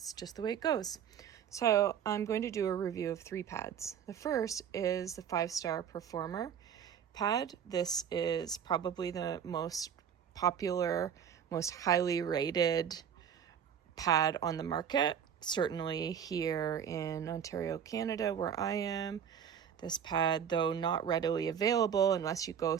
just the way it goes. So I'm going to do a review of 3 pads. The first is the 5-star Performer pad. This is probably the most popular, most highly rated pad on the market. Certainly here in Ontario, Canada, where I am. This pad, though not readily available unless you go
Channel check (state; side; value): quieter; left; 8.3 dB